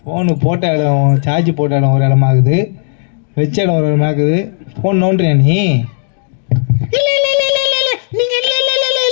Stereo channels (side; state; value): right; silent; digital silence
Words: ஃபோனு போட்ட இடம் சார்ஜ் போட்ட இடம் ஒரு இடமாகுது, வச்ச இடம் ஒரு இடமாகுது. ஃபோன் நோண்டுறியா நீ? இல்ல இல்ல இல்ல இல்ல இல்ல இல்ல நீங்க இல்ல இல்ல இல்ல